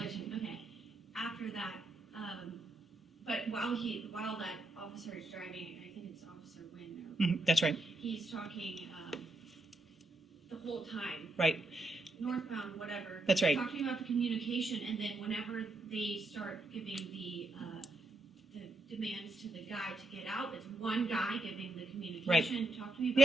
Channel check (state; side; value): normal; both; correlation 0.81